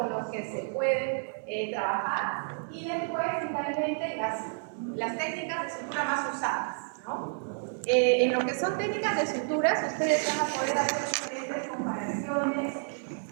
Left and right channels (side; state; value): left; silent; 58 dB below the other